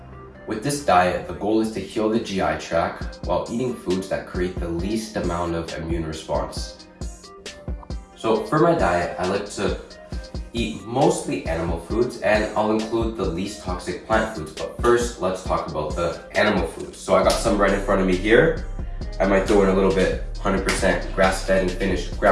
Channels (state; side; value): identical; both; correlation 1.00